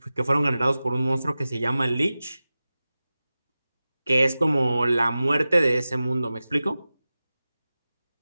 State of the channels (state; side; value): inverted; both; correlation -0.96